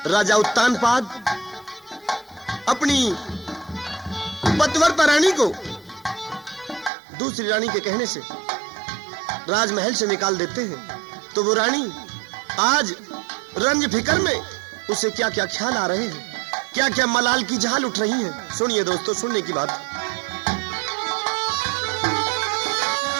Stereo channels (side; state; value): left; drops out; at 6.9 s